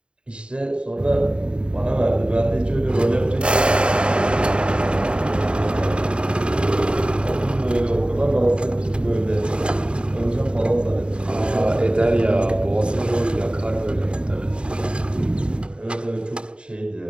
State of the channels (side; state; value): left; late; 0.053 ms